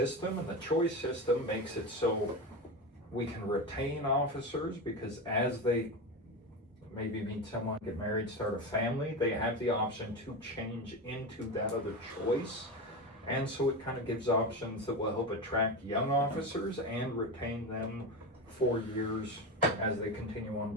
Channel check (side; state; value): both; normal; correlation 0.20